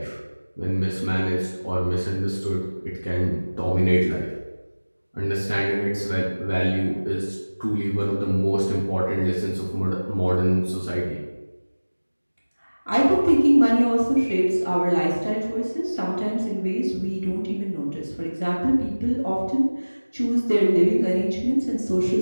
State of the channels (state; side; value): inverted; both; correlation -1.00